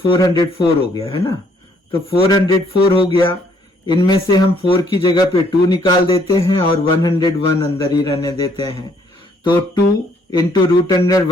हो गया है ना। तो 404 हो गया। इनमें से हम 4 की जगह पे 2 निकाल देते हैं और 101 अंदर ही रहने देते हैं। तो 2 into root under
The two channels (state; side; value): normal; both; correlation 0.65